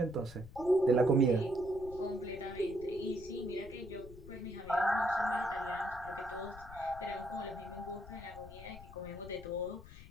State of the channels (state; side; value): noise; left; rumble, 16 dB below the sound